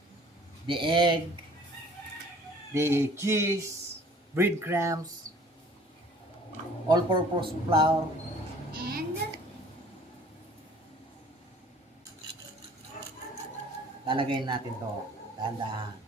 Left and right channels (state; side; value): normal; both; correlation 0.52